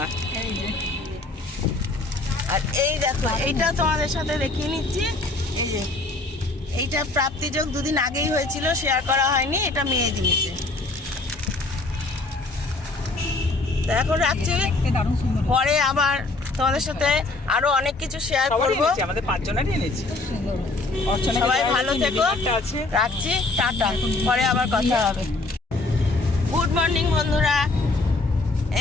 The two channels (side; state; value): right; quieter; 3.2 dB